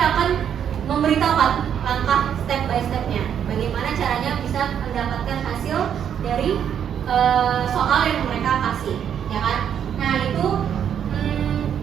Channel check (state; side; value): quieter; left; 8.8 dB